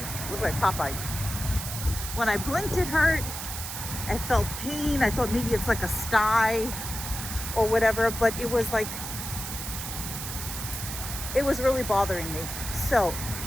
looked like Popeye. When I blinked, it hurt. I felt pain. I thought maybe it's like a sty or whatever, but it was like, it was really bothering me. So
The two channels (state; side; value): noise; right; hiss, 6 dB below the sound